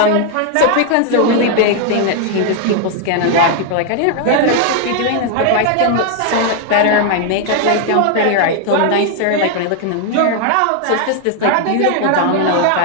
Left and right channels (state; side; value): different; both; correlation 0.00